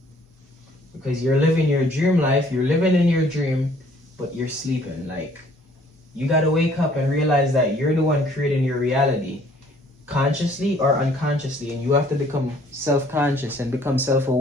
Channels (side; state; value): both; normal; correlation 0.59